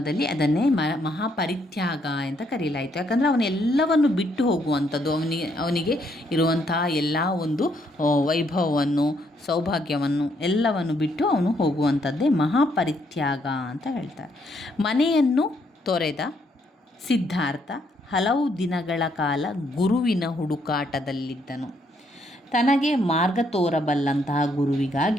ಅದನ್ನೇ ಮಹಾಪರಿತ್ಯಾಗ ಅಂತ ಕರೆಯಲಾಯಿತು. ಯಾಕಂದರೆ ಅವನೆಲ್ಲವನ್ನು ಬಿಟ್ಟು ಹೋಗುವಂಥದ್ದು, ಅವನಿಗೆ ಇರುವಂತಹ ಎಲ್ಲ ಒಂದು ವೈಭವವನ್ನು, ಸೌಭಾಗ್ಯವನ್ನು ಎಲ್ಲವನ್ನು ಬಿಟ್ಟು ಅವನು ಹೋಗುವಂಥದ್ದೇ ಮಹಾಪರಿತ್ಯಾಗ ಅಂತ ಹೇಳ್ತಾರೆ. ಮನೆಯನ್ನು ತೊರೆದ ಸಿದ್ಧಾರ್ಥ ಹಲವು ದಿನಗಳ ಕಾಲ ಗುರುವಿನ ಹುಡುಕಾಟದಲ್ಲಿದ್ದನು. ತನಗೆ ಮಾರ್ಗ ತೋರಬಲ್ಲಂತಹ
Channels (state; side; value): normal; both; correlation 0.72